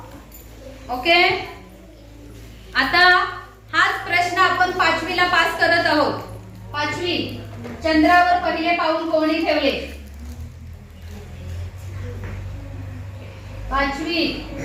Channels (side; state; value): both; identical; correlation 1.00